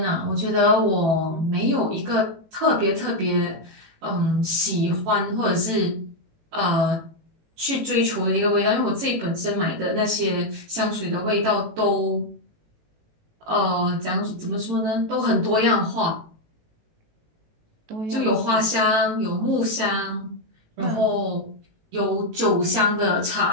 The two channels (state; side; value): late; left; 18 ms